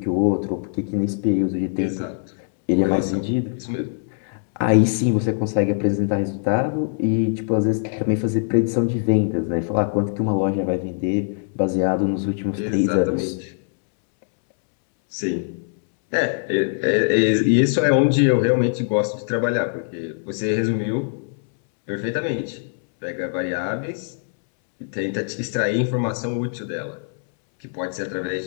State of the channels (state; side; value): silent; right; 64 dB below the other